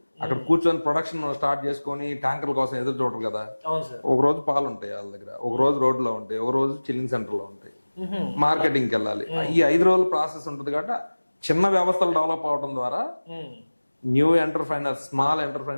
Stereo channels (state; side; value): inverted; both; correlation -1.00